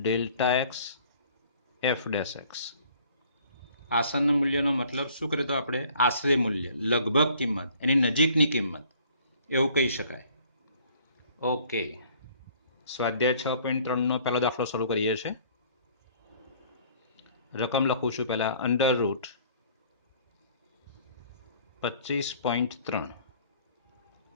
x f dash x। આસન મૂલ્યનો મતલબ શું કરે તો આપણે આશરે મૂલ્ય, લગભગ કિંમત, એની નજીકની કિંમત એવું કહી શકાય। ઓકે, સ્વાધ્યાય 6.3નો પહેલો દાખલો શરૂ કરીએ છીએ। રકમ લખું છું પહેલા, અંડર રૂટ 25.3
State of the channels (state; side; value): inverted; both; correlation -0.56